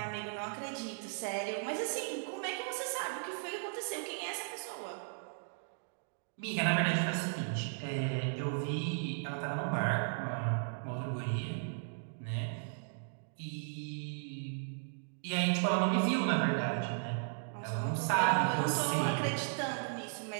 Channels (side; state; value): left; silent; digital silence